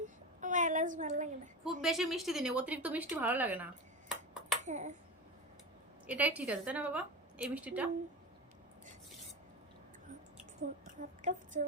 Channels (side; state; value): both; normal; correlation 0.23